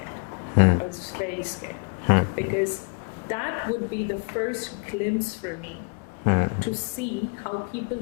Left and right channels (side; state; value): right; quieter; 36.2 dB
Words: I was very scared because that would be the first glimpse for me to see how people